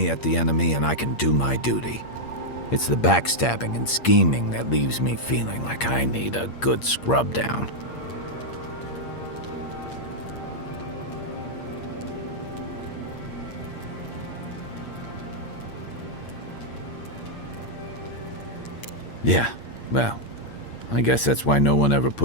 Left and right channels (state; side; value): late; right; 8.6 ms